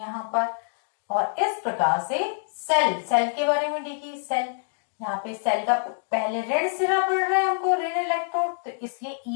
पर। और इस प्रकार से सेल के बारे में देखिए, सेल यहाँ पे सेल का पहले ऋण सिरा पड़ रहा है हमको, ऋण इलेक्ट्रोड, तो इसलिए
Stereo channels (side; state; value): right; silent; digital silence